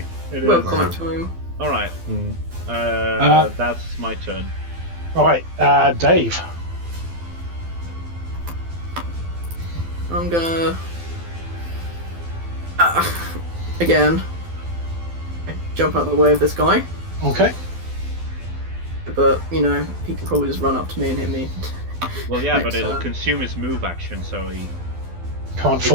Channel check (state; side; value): late; left; 12 ms